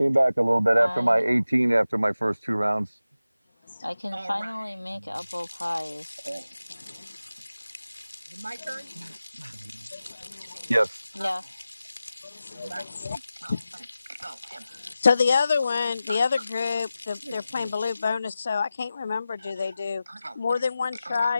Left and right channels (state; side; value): inverted; both; correlation -0.94